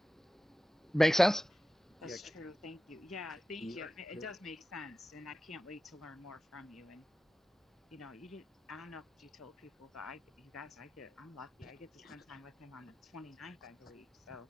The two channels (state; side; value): normal; both; correlation 0.94